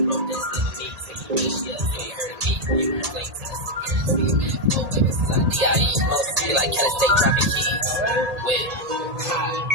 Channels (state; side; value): late; left; 1.8 ms